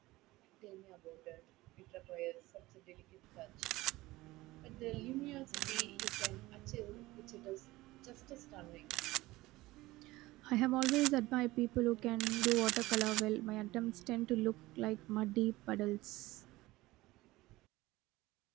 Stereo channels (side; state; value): left; quieter; 19.0 dB